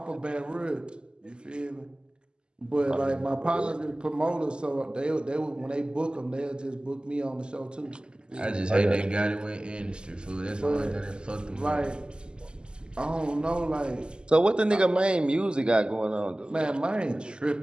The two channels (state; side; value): late; left; 0.048 ms